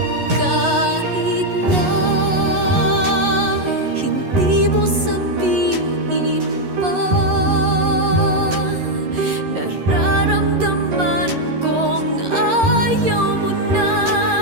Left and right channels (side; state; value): left; late; 11 ms